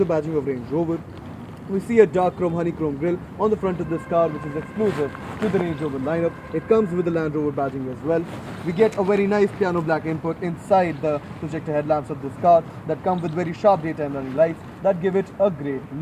badging of Range Rover. We see a dark chrome honeycomb grille on the front of this car, which is exclusive to the Range Rover lineup. It comes with the Land Rover badging as well. We get a very nice piano black input inside the projector headlamps of this car that come with very sharp daytime running lights that give it a great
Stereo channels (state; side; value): identical; both; correlation 1.00